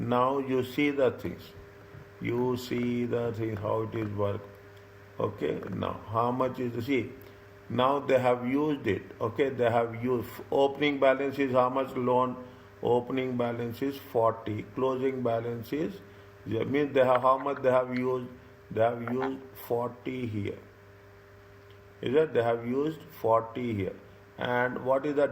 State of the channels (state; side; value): identical; both; correlation 1.00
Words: you see the things. You see the thing, how it is work. Okay, now how much is the, see, now they have used it. Okay, they have used, opening balance is how much loan? Opening balance is 40, closing balance is, means they have, how much they have used? They have used 40 here. Is that they have used 40 here. And what is the